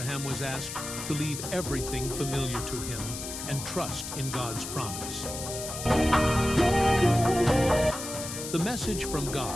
was asked to leave everything familiar to him and trust in God's promise. The message from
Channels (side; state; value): left; noise; hiss, 7 dB below the sound